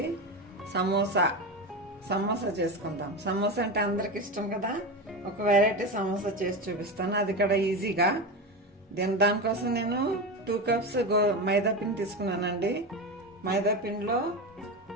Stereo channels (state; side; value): normal; both; correlation 0.20